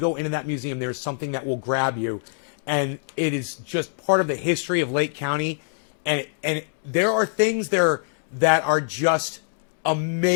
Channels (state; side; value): silent; right; digital silence